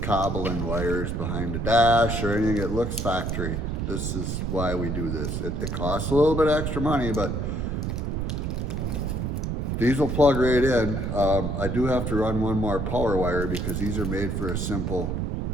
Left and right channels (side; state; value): right; noise; rumble, 1 dB below the sound